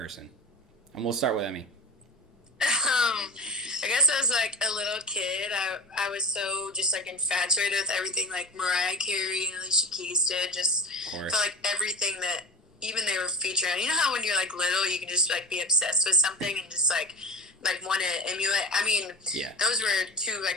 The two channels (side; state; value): both; normal; correlation 0.31